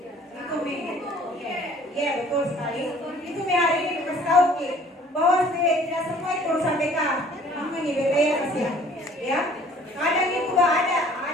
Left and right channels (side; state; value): both; normal; correlation 0.53